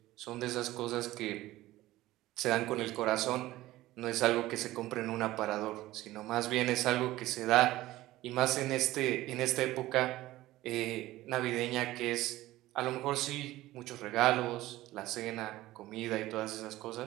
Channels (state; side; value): quieter; left; 16.7 dB